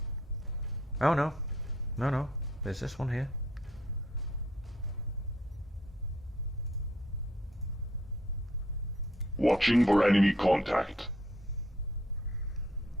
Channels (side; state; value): both; normal; correlation 0.68